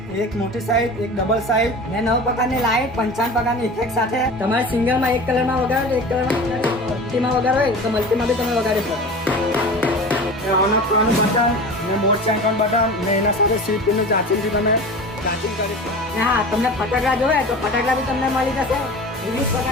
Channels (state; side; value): normal; both; correlation 0.35